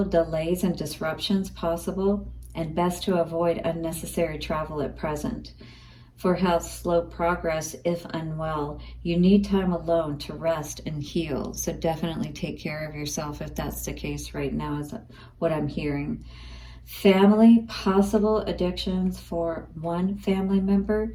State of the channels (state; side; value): identical; both; correlation 1.00